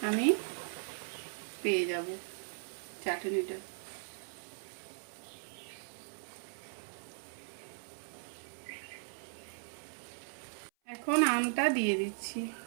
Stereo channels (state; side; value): silent; left; 52 dB below the other